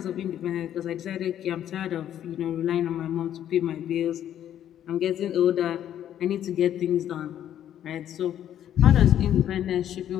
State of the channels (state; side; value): quieter; right; 10.8 dB